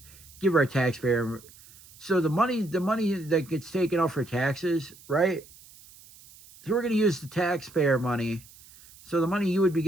give our taxpayer. So the money that gets taken off for taxes, right? So we're going to use the taxpayer money. So the money you would be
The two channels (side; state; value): right; noise; hiss, 23 dB below the sound